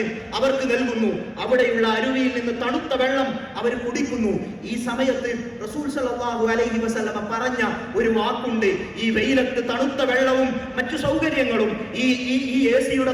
അവർക്ക് നൽകുന്നു. അവിടെയുള്ള അരുവിയിൽ നിന്ന് തണുത്ത വെള്ളം അവർ കുടിക്കുന്നു. ഈ സമയത്ത് റസൂൽ സല്ലല്ലാഹു അലൈഹി വസല്ലമ പറഞ്ഞ ഒരു വാക്കുണ്ട്, ഈ വെയിലത്ത് തണുത്ത വെള്ളവും മറ്റു സൗകര്യങ്ങളും ഈ എസിയുടെ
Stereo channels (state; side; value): identical; both; correlation 1.00